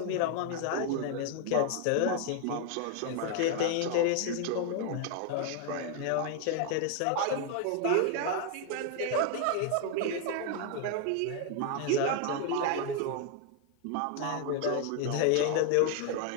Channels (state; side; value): different; both; correlation 0.01